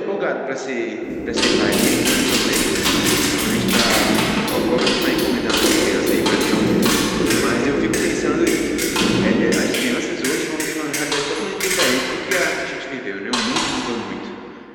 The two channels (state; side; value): identical; both; correlation 1.00